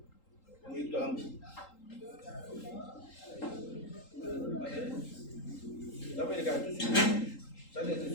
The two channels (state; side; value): late; right; 3.8 ms